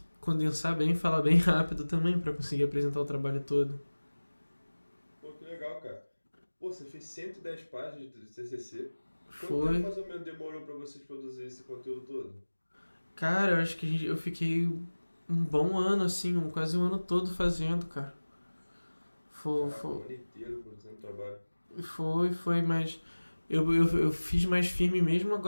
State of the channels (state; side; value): inverted; both; correlation -1.00